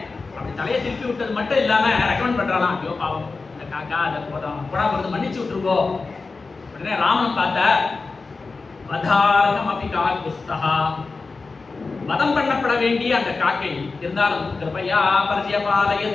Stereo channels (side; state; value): right; quieter; 4.1 dB